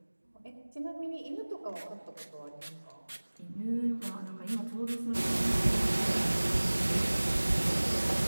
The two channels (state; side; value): inverted; both; correlation -1.00